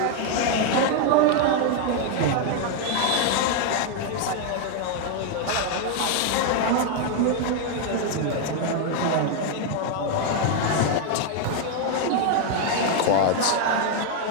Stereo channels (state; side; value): different; both; correlation 0.01